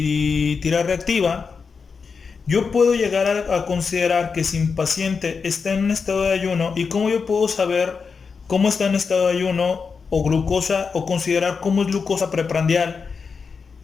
tira reactiva, yo puedo llegar a considerar que si mi paciente está en un estado de ayuno, y cómo yo puedo saber cómo está en estado de ayuno o glucosa, o considerar cómo es glucosa preprandial,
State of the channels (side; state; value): right; quieter; 5.3 dB